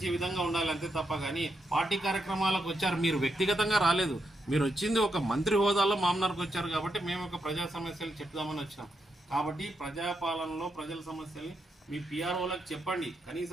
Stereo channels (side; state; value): both; normal; correlation 0.82